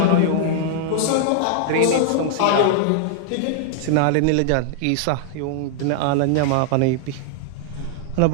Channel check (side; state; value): both; different; correlation -0.01